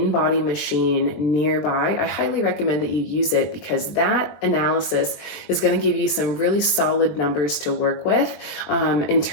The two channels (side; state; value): right; late; 20 ms